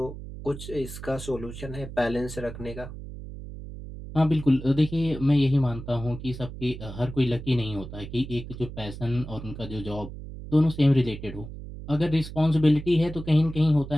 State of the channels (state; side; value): noise; right; hum, 11 dB below the sound